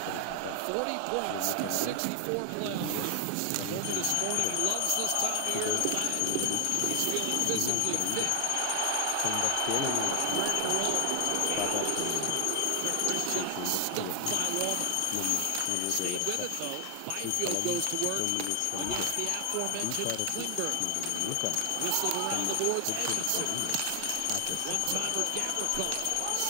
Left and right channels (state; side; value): different; both; correlation 0.00